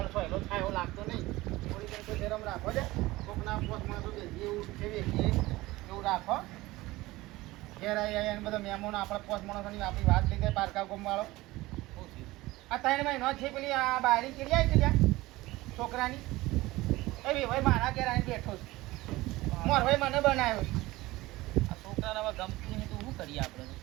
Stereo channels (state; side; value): quieter; left; 19.2 dB